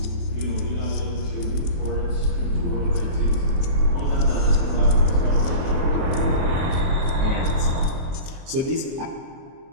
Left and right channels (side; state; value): left; late; 23 ms